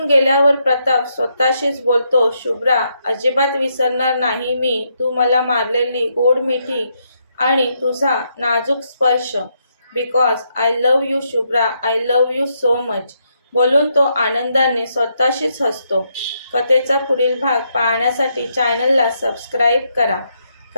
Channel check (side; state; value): both; inverted; correlation -0.78